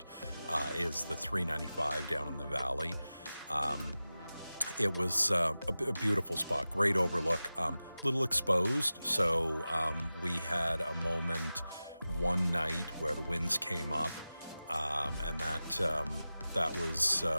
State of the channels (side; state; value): both; inverted; correlation -0.95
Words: is the 395 down in the valley. It was a beautiful spot, great overlook, little exposed. So we had a moment one night where the winds came up, and that was